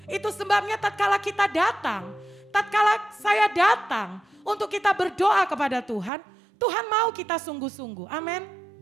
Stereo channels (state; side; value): drops out; left; at 6.1 s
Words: Itu sebabnya tatkala kita datang, tatkala saya datang untuk kita berdoa kepada Tuhan, Tuhan mau kita sungguh-sungguh. Amin.